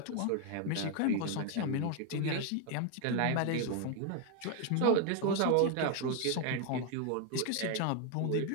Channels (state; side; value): different; both; correlation 0.01